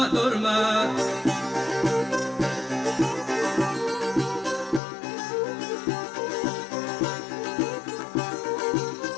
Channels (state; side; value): drops out; right; at 4.8 s